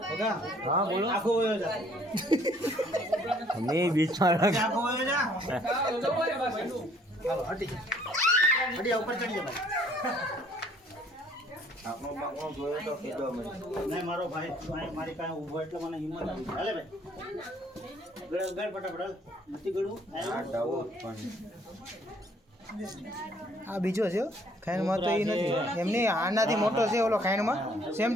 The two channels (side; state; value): both; normal; correlation 0.61